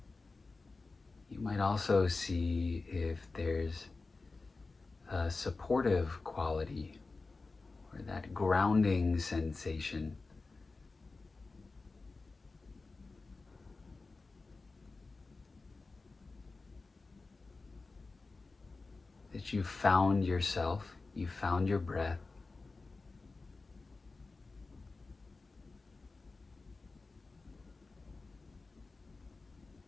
you might also see if there's a supportive quality or that grounding sensation. That you found yourself, you found your breath.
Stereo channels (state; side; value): quieter; right; 3.8 dB